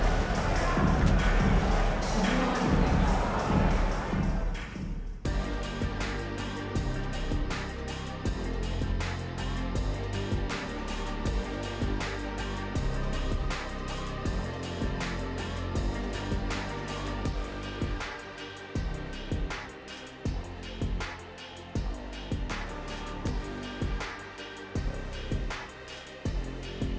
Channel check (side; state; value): both; identical; correlation 1.00